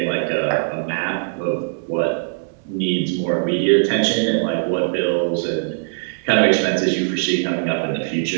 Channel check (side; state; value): left; silent; digital silence